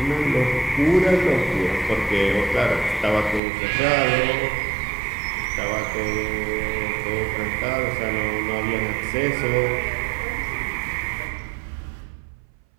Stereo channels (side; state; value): left; drops out; at 3.4 s